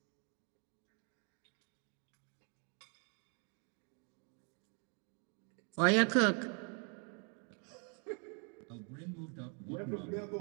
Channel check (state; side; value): quieter; left; 39.5 dB